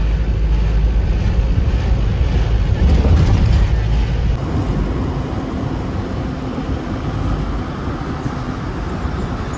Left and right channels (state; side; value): identical; both; correlation 1.00